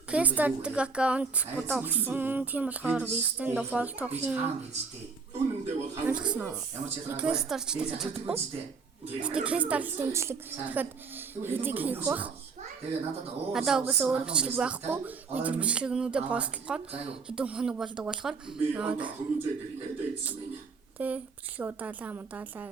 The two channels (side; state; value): left; quieter; 4.9 dB